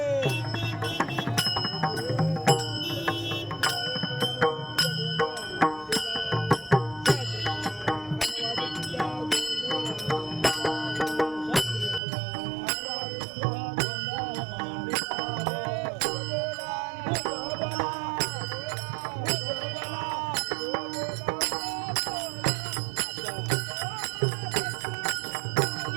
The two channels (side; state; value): left; drops out; at 12.0 s